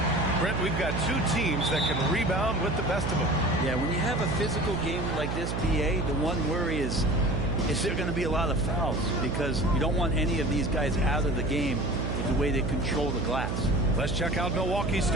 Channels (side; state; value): right; noise; hum, 2 dB below the sound